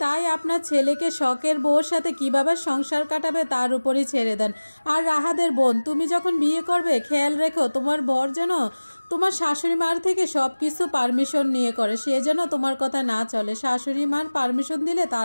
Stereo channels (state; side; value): inverted; both; correlation -1.00